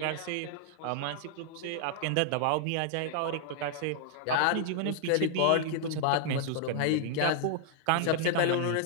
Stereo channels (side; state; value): both; different; correlation -0.01